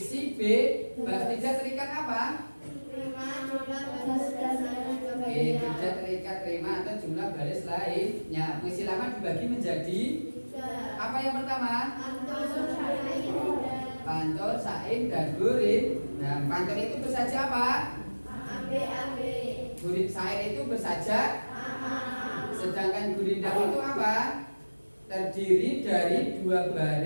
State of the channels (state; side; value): inverted; both; correlation -1.00